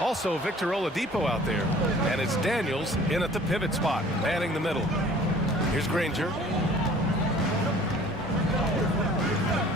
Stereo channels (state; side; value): normal; both; correlation 0.50